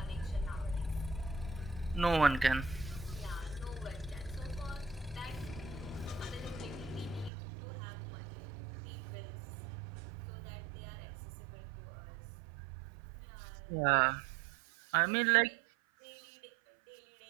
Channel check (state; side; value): drops out; left; at 7.3 s